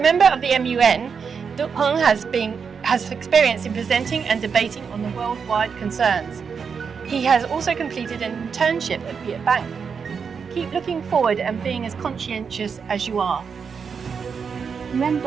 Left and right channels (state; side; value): quieter; left; 6.1 dB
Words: member of the MUN, Duc Hong has experience in presenting and debating on the worldwide concerns. He has also completed an internship at Viet Bank. Keep looking forward and being as conscientious as you are. Nguyen